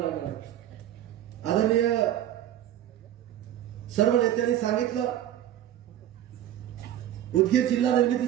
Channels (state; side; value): quieter; left; 11.8 dB